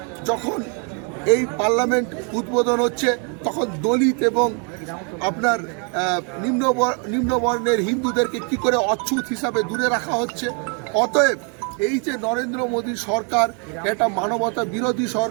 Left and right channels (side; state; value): left; quieter; 37.8 dB